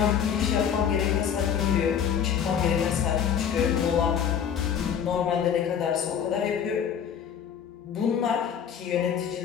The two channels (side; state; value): right; quieter; 8.1 dB